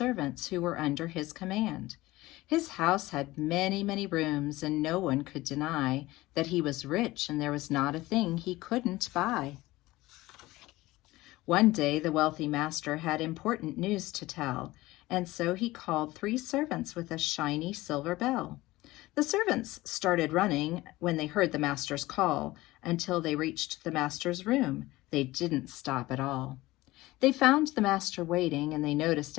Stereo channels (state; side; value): quieter; right; 18.7 dB